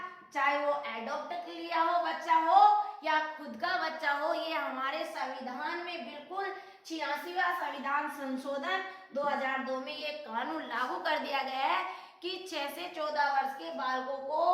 चाहे वो एडॉप्ट लिया हो बच्चा हो या खुद का बच्चा हो, ये हमारे संविधान में बिल्कुल 86वां संविधान संशोधन 2002 में ये कानून लागू कर दिया गया है कि 6 से 14 वर्ष के बालकों को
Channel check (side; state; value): both; identical; correlation 1.00